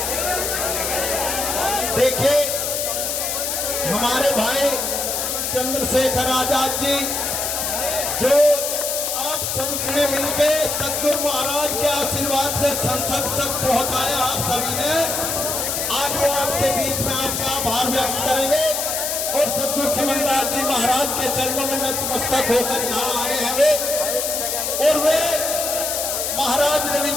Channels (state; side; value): noise; left; hiss, 1 dB below the sound